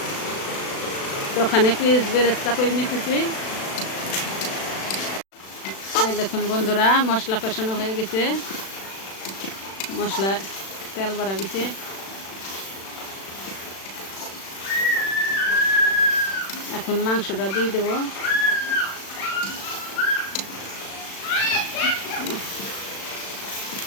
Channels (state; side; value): late; right; 36 ms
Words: ওখানে পিস বেরেস্তা করে নিতেছি। এই দেখুন বন্ধুরা, মশলা কষানো হয়ে গেছে, মশলা তেল বাড়া গেছে। এখন মাংসটা দিয়ে দেব।